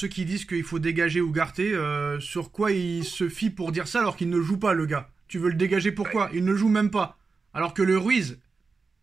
qui disent qu'il faut dégager Ugarte, sur quoi il se fie pour dire ça alors qu'il ne joue pas, le gars? Tu veux le dégager pourquoi? Il ne joue même pas. Alors que le Ruiz,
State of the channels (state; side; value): quieter; left; 4.5 dB